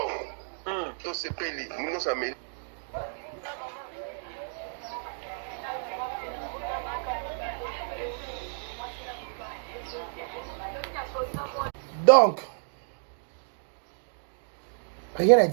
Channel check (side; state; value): left; silent; digital silence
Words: to se peli nous ça mais donc rien à